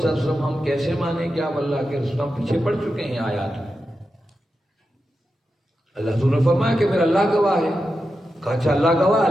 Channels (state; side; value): normal; both; correlation 0.90